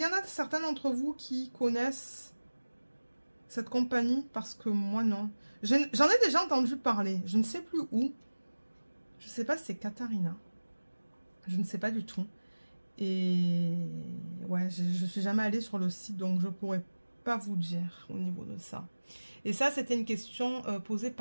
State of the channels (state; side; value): inverted; both; correlation -1.00